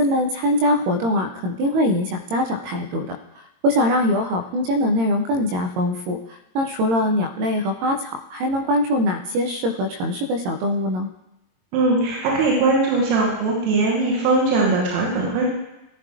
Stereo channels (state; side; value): late; left; 22 ms